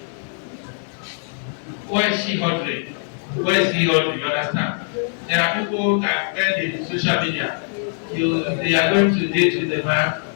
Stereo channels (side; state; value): right; silent; 64 dB below the other